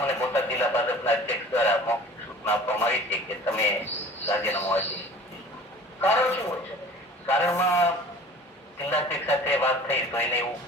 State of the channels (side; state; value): both; normal; correlation 0.45